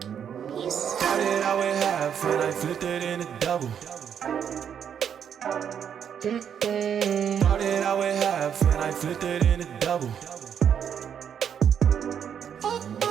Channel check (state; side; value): quieter; left; 8.3 dB